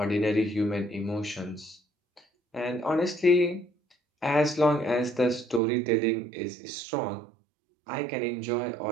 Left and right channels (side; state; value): left; drops out; at 5.6 s